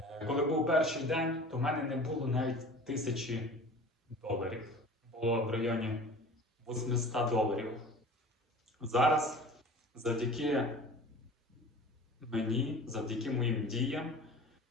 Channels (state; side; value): normal; both; correlation 0.41